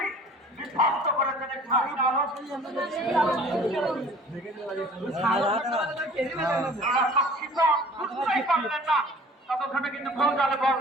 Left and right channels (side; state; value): both; normal; correlation 0.48